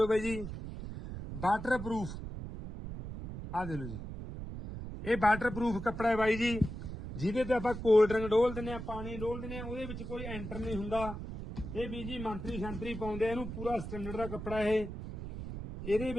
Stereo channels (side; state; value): right; noise; rumble, 8 dB below the sound